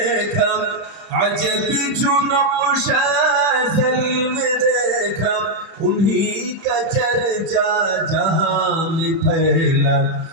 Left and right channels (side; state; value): left; late; 31 ms